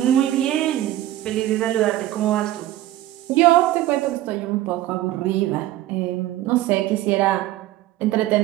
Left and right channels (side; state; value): left; quieter; 14.4 dB